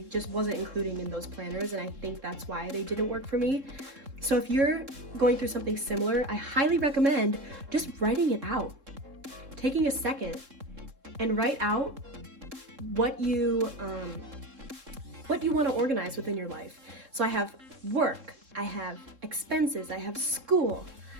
just wasn't including in those planners, and I think that's why they didn't work for me. So if you're going through something similar, I highly recommend just writing it out. Taking a second and write out what you want to organize within your life. So I have work, I have expenses, I have school,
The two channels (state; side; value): late; left; 3.7 ms